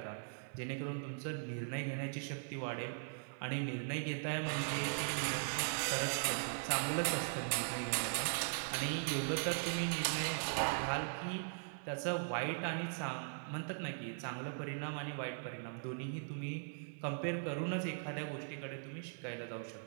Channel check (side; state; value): left; silent; digital silence